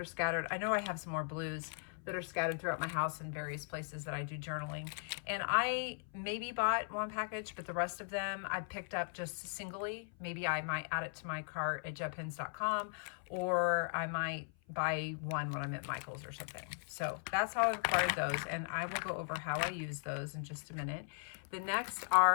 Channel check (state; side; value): silent; right; 52 dB below the other